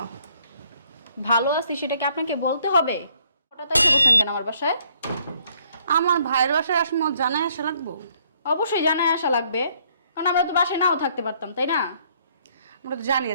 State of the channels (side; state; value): both; inverted; correlation -0.66